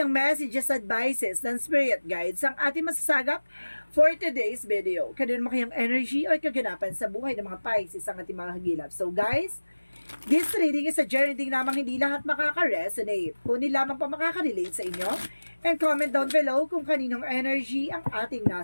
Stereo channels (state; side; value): inverted; both; correlation -1.00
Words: messages, advices ng spirit guides ang ating masasagap for today's video? Kailan mo kayang energy o kaganapan sa buhay ng mga Pisces ang ating mga hagilap? So guys, this reading is a journey din namang hindi lahat makaka-resonate. Kunin lamang pa makaka-relate sa inyo. And comment down below kung kaninong energy ang ating